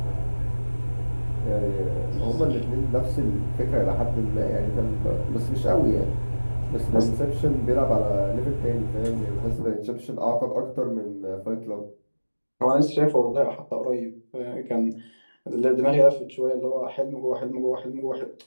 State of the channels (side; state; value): both; inverted; correlation -1.00